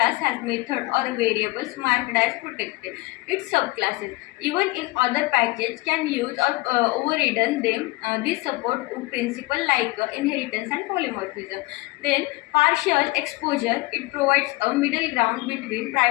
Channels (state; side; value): quieter; right; 21.9 dB